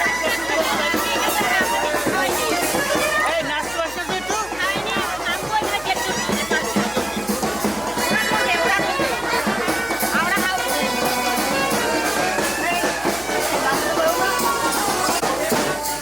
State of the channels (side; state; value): left; noise; hum, 18 dB below the sound